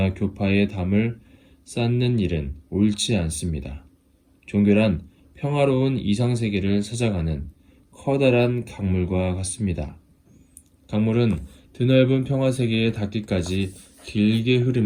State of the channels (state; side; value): identical; both; correlation 1.00